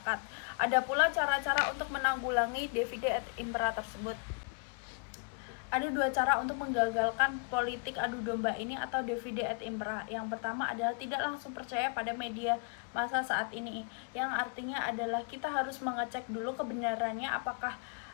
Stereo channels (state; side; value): quieter; right; 39.8 dB